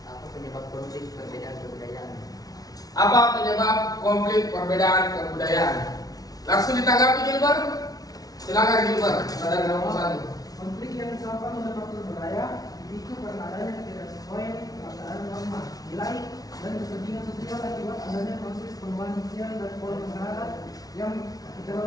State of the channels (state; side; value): late; right; 0.18 ms